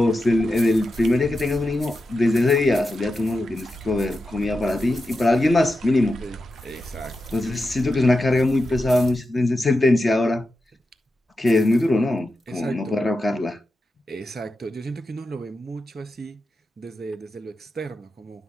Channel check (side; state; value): both; normal; correlation 0.90